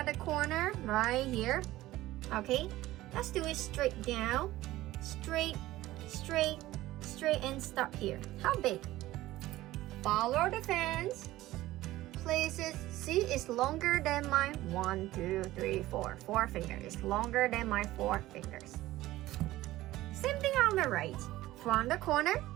the corner right here. Okay, let's do it straight down, straight, straight, straight, and stop here. How big? Follow the fence. Places, see, it's longer than my 1, 2, 3, 4 fingers. It's longer than my 4 fingers. Same thing on the right. From the corner,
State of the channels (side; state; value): left; quieter; 16.5 dB